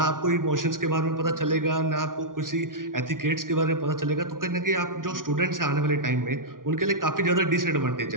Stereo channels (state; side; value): late; left; 0.89 ms